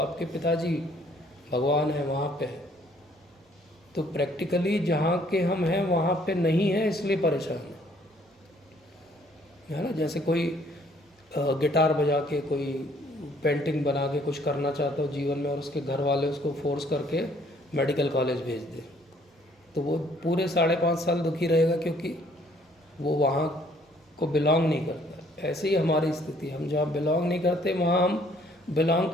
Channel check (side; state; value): both; normal; correlation 0.62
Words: पिताजी भगवान है, वहाँ पे है। तो प्रैक्टिकली जहाँ के हम हैं वहाँ पे नहीं है, इसलिए परेशान है ना। जैसे कोई गिटार बजा के, कोई पेंटिंग बना के कुछ करना चाहता हो जीवन में, और उसके घर वाले उसको फोर्स करके मेडिकल कॉलेज भेज दे, तो वो पूरे 5.5 साल दुखी रहेगा, क्योंकि वो वहाँ को बिलोंग नहीं करता। ऐसे ही हमारी स्थिति, हम जहाँ बिलोंग नहीं करते वहाँ हम बिलोंग